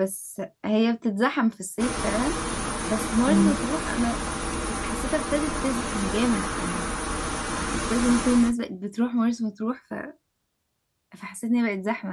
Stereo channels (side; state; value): both; identical; correlation 1.00